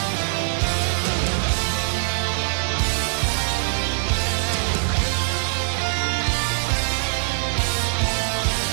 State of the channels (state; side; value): silent; left; digital silence